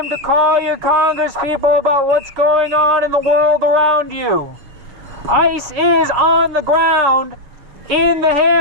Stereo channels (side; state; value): left; late; 6.9 ms